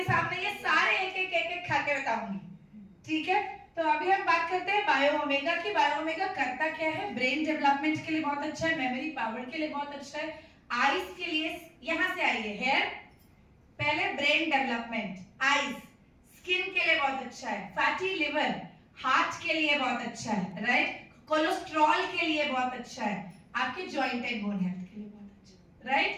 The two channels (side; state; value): both; identical; correlation 1.00